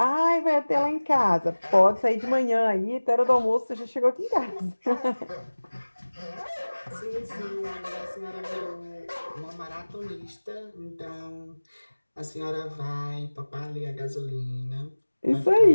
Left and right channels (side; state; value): both; inverted; correlation -1.00